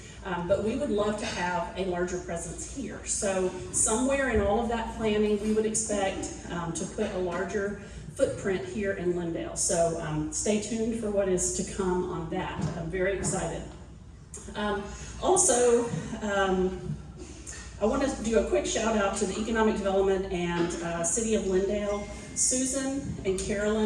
But we would love to have a larger presence here. So somewhere in all of that planning, we would expect to put a larger footprint here in Lindale. So stay tuned for what is to come on that. I'm very excited. Also, I want to do a quick shout out to the Economic Development and City of Lindale. Susan and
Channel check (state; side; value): identical; both; correlation 1.00